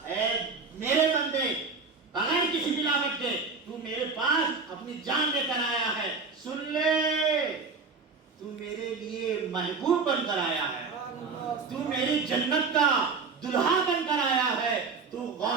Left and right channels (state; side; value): quieter; left; 4.6 dB